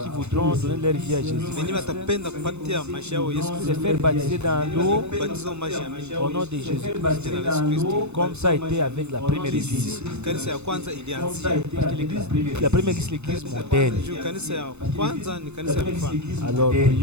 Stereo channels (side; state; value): left; late; 0.81 ms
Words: voudront donner leur vie à Jésus, wenyewe watapenda kupatia maisha yao Yesu se Kristo, faire baptiser dans l'eau kubatizo maji ya mimi au nom de Jésus-Christ, jina la Yesu Kristo. comme ça a été avec la première église. Kanisa ya kwanza ilianzia Parce que l'église, la première église, c'est l'église modèle. juu, kanisa ya kwanza ni kanisa ya mfano. Alors,